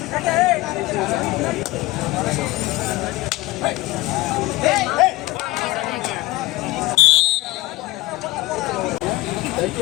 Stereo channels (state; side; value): quieter; right; 19.2 dB